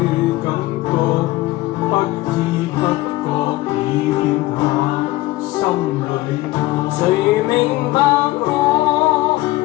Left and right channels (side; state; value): right; quieter; 18.3 dB